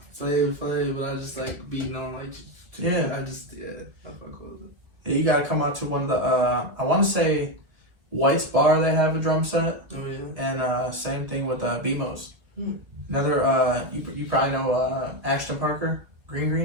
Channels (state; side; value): late; left; 2.0 ms